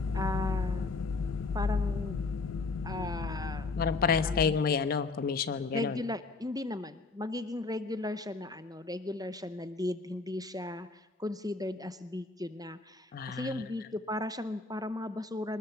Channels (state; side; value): quieter; right; 3.8 dB